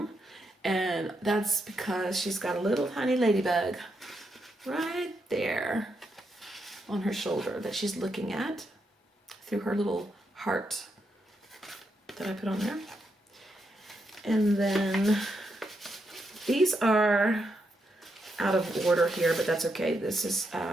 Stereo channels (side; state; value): both; normal; correlation 0.82